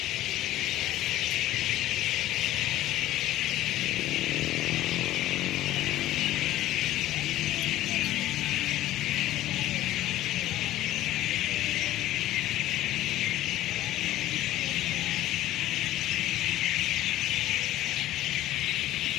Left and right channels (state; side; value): quieter; right; 14.6 dB